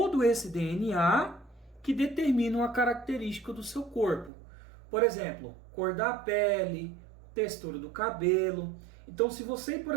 esse DNA que determina uma característica do seu corpo. Por exemplo, cor da pele, textura do cabelo. Então, se você, por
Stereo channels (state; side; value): drops out; left; at 4.3 s